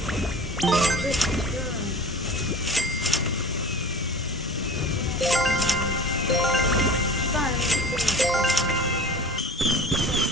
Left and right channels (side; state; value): both; normal; correlation 0.38